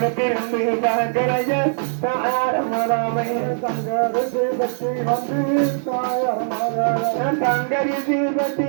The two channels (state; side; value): silent; left; digital silence